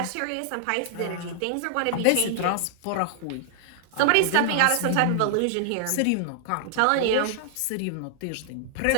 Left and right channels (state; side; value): different; both; correlation -0.01